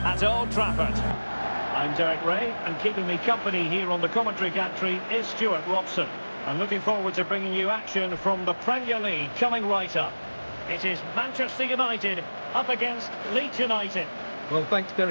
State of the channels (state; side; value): inverted; both; correlation -1.00